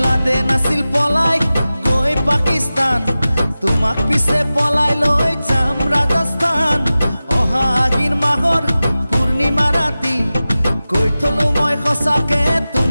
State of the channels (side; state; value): both; inverted; correlation -0.96